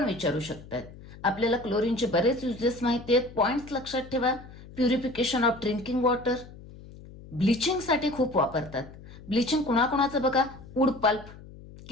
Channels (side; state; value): left; noise; hum, 18 dB below the sound